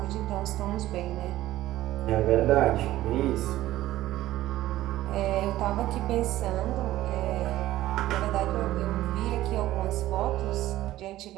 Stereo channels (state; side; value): quieter; left; 15.0 dB